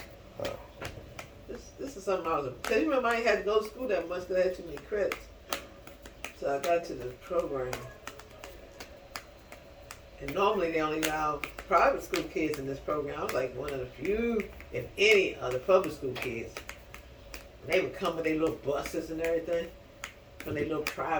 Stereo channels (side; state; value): both; identical; correlation 1.00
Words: Oh. This is something I was. Cause you remember I ain't had to go to school that much because I had too many credits. So I got to the program. And normally they only allow private school kids in this program. I was like one of the few, if any, of the public school kids. And they would come with their little buses and everything. When they little